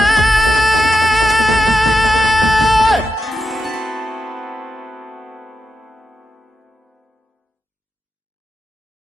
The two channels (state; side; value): normal; both; correlation 0.88